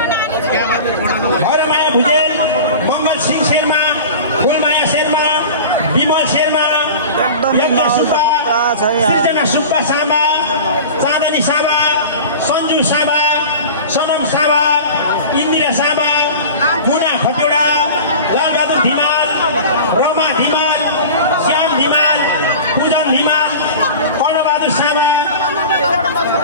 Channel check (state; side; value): inverted; both; correlation -0.35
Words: हरमाया भुजेल मङ्गल सिंह शर्मा फुलमाया शर्मा विमल शर्मा यज्ञ सुब्बा सृजना सुब्बा सामा चाँदनी सामा सञ्जु सामा सनम सामा इन्दिरा सामा मुना खतिवडा लालबहादुर धिमाल रमा धिमाल श्याम धिमाल पूजन धिमाल कर्णबहादुर सामा